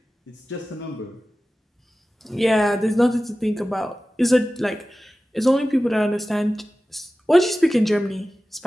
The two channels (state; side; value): normal; both; correlation 0.96